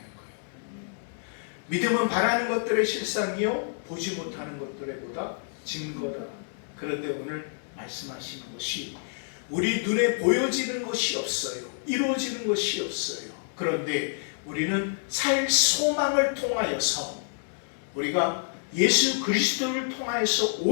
믿음은 바라는 것들의 실상이요 보지 못하는 것들의 보다 증거다. 그런데 오늘 말씀하시는 것이 우리 눈에 보여지는 것이 없어요. 이루어지는 것이 없어요. 그런데 우리는 살 소망을 통하여서 우리가 예수 그리스도를 통하여서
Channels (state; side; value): silent; right; 59 dB below the other